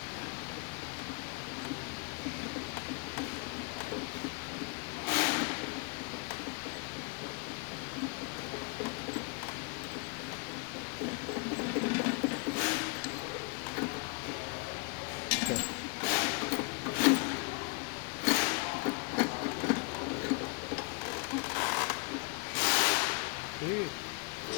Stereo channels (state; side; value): quieter; right; 33.1 dB